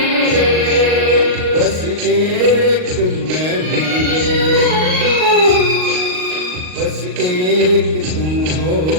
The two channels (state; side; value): late; left; 38 ms